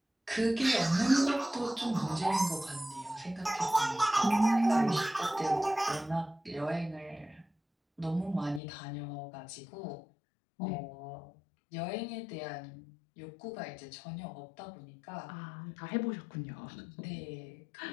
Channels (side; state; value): right; drops out; at 8.6 s